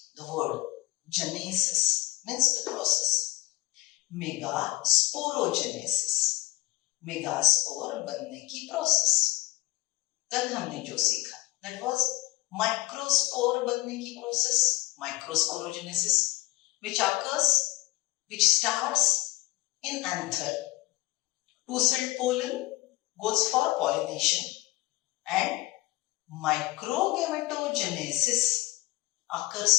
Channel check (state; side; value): quieter; right; 20.1 dB